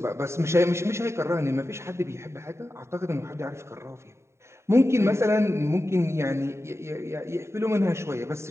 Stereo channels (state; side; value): late; left; 0.13 ms